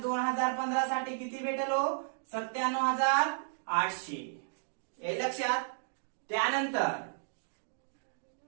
2015 साठी किती भेटेल हो 97,800. हे लक्षात. त्यानंतर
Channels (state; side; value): silent; left; digital silence